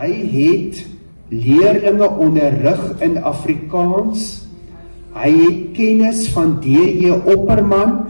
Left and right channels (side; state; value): both; inverted; correlation -1.00